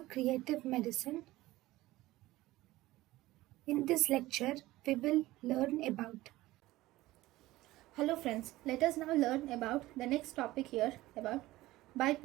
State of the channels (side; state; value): left; quieter; 17.6 dB